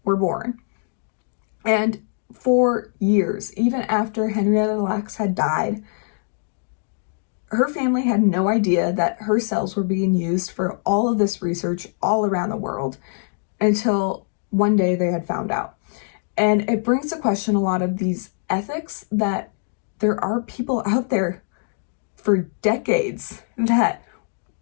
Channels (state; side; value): silent; right; digital silence